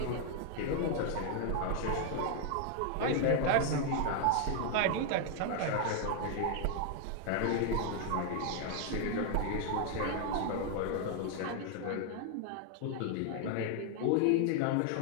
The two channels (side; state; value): both; different; correlation 0.00